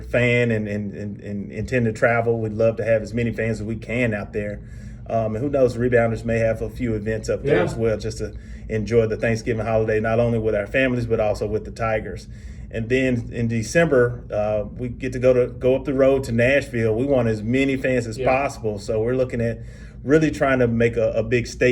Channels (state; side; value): identical; both; correlation 1.00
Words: fan and intend to travel, we'd love to have as many fans as we can out there. And who knows, the Rebounders may have a few events up there as well, just to enjoy the Thanksgiving holiday, not only with our families, but also with the Tigers. And then in December, we get to go up the road to Nashville. We want as many fans as possible. So we're looking at really trying to make a big